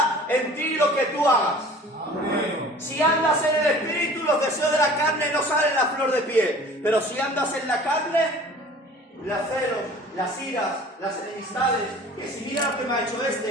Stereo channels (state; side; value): normal; both; correlation 0.46